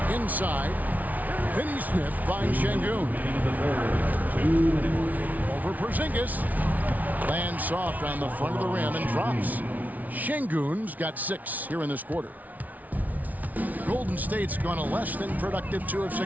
Inside. Finney-Smith finds Şengün. Over Porzingis. Lands soft on the front of the rim and drops. Şengün's got 6 here in this quarter. Golden State's gone a less than productive 2 of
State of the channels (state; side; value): late; left; 0.075 ms